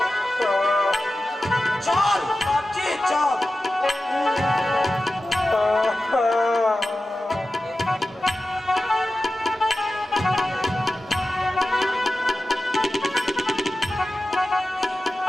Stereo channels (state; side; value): normal; both; correlation 0.94